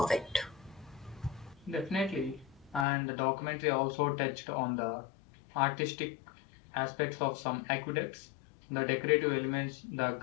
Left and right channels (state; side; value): drops out; right; at 2.9 s